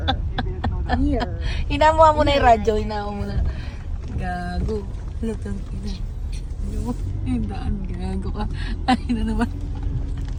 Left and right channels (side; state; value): both; identical; correlation 1.00